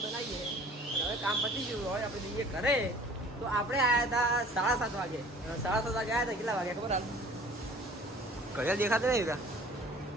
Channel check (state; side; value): normal; both; correlation 0.49